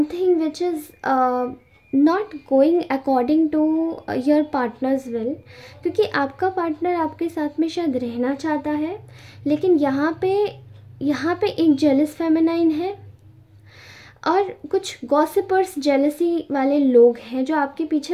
which is not going according to your partner's will, क्योंकि आपका पार्टनर आपके साथ में शायद रहना चाहता है, लेकिन यहाँ पे एक जेलस फेमिनाइन है और कुछ गॉसिपर्स, जेलसी वाले लोग हैं जो आपके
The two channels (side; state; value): both; identical; correlation 1.00